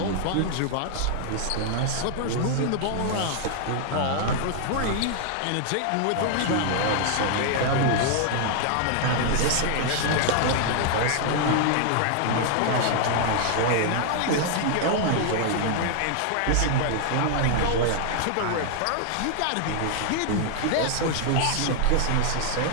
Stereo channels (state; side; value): different; both; correlation 0.00